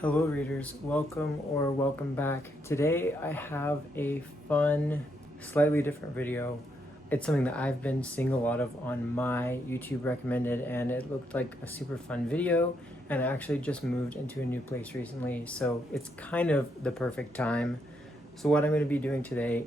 Hello readers, welcome back. Today I have a fun, slightly different video. It's something that I've been seeing a lot of on my YouTube recommended, and it looked like a super fun video, and I actually just moved into a new place recently, so it's kind of the perfect time. So what I'm going to be doing today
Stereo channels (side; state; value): both; normal; correlation 0.77